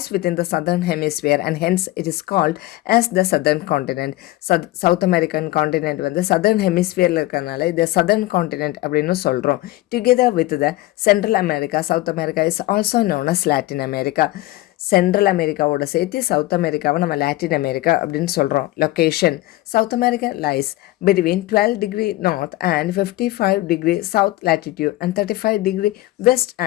within the southern hemisphere and hence it is called as the southern continent. South American continent வந்து southern hemisphere இருக்கிறதுனால இது southern continent அப்படின்னு சொல்கிறோம். Together with the Central America, South America is also known as Latin America. Central அமெரிக்காவோட சேர்த்து south அமெரிக்காவை நம்ம Latin America அப்படின்னு சொல்கிறோம். Location south America lies between 12 degree north and 55 degree south latitude and 35 degree west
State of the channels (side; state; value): right; quieter; 17.6 dB